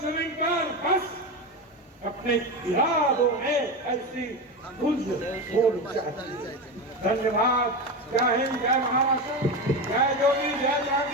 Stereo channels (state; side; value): normal; both; correlation 0.19